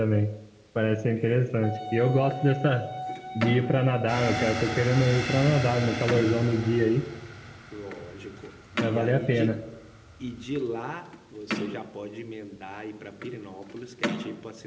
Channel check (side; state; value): both; identical; correlation 1.00